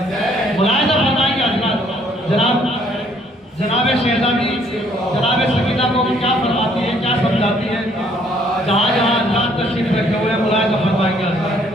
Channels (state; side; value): normal; both; correlation 0.64